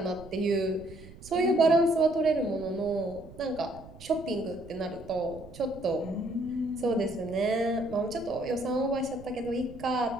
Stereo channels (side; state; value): right; noise; rumble, 17 dB below the sound